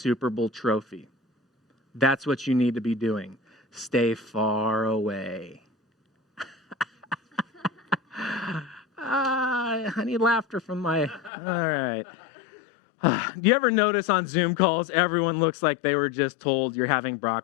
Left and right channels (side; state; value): right; drops out; at 11.3 s